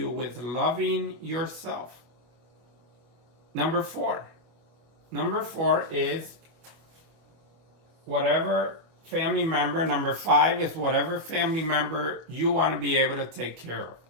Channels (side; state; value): left; late; 24 ms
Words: with loving yourself. Number 4. Number 4 is whatever family member. Number 5 is whatever family member you want to be able to take care of.